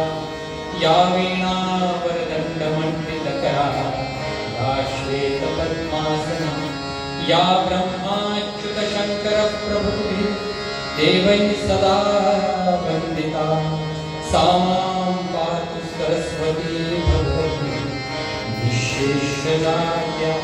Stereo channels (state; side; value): identical; both; correlation 1.00